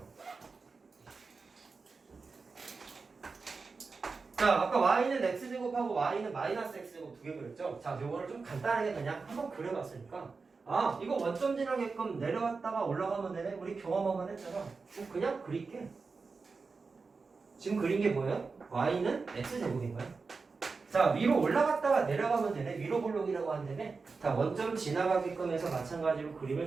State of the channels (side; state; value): left; quieter; 4.5 dB